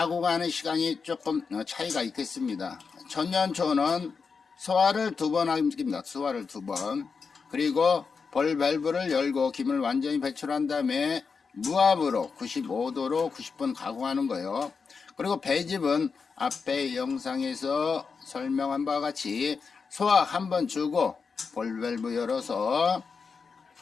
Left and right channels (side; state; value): right; quieter; 5.2 dB